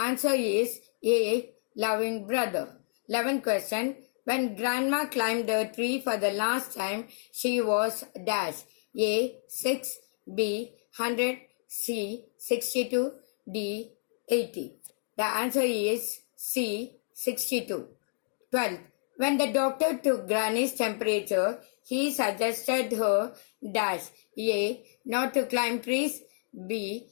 is A. Loving brother. 11th question. When grandma climbed a tree for the last time, she was dash. A. 6. B. 100. C. 62. D. 80. The answer is C. 62. 12th. When the doctor took Granny's temperature, he suggested her dash. A. Not to climb trees. B.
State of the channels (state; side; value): silent; right; digital silence